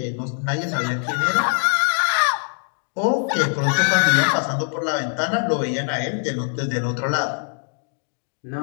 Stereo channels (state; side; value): silent; right; 64 dB below the other